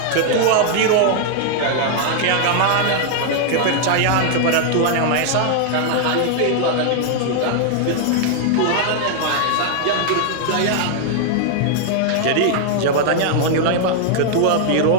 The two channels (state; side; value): different; both; correlation 0.00